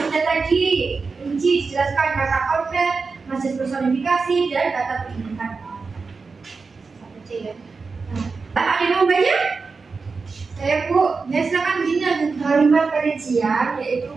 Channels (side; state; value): left; quieter; 4.5 dB